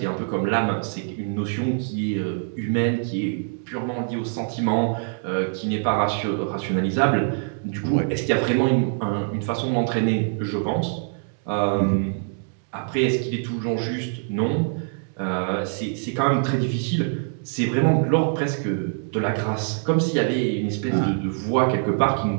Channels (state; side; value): silent; left; 62 dB below the other